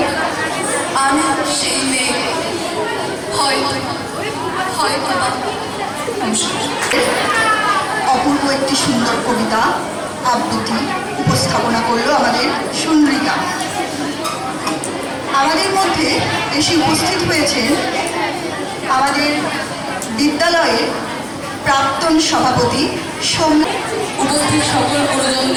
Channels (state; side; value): identical; both; correlation 1.00